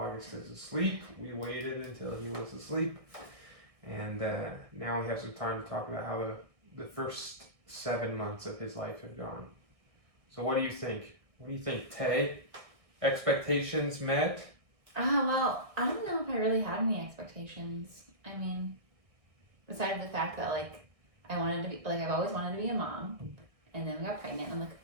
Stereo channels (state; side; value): late; left; 1.6 ms